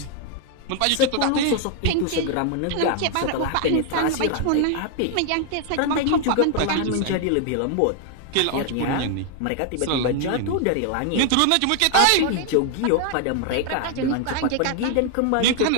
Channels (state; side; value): different; both; correlation 0.00